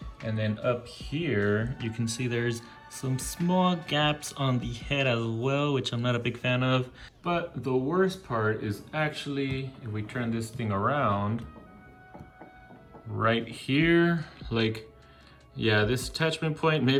And then up here, you can see there's some small gaps on the head as well, which I'm not a big fan of. But the worst part is actually, if we turn this thing around, right here, like, yeah, this attachment point,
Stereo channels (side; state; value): both; identical; correlation 1.00